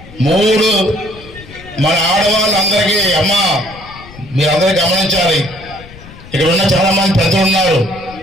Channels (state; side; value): noise; left; rumble, 19 dB below the sound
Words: 3 మన ఆడవాళ్ళందరికీ, అమ్మా మీరందరూ గమనించాలి, ఇక్కడ ఉన్న చాలా మంది పెద్దలు ఉన్నారు.